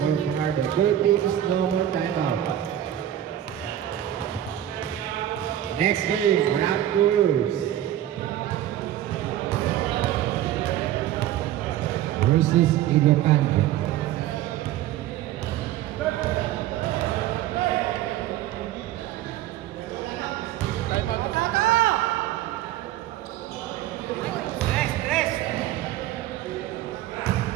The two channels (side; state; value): left; quieter; 12.3 dB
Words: Fajardo. Both teams, no more timeout. Next game, Raptors versus Ilocano. Rest, rest.